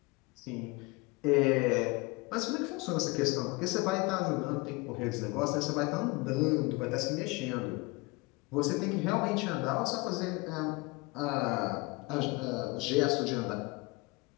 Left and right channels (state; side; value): quieter; right; 25.1 dB